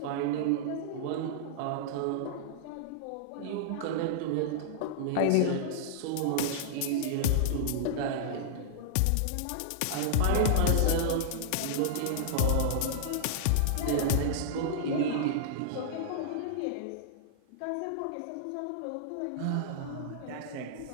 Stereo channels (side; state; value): both; different; correlation -0.01